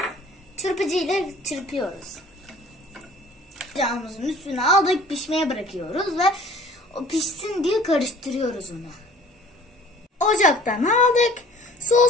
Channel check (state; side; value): normal; both; correlation 0.50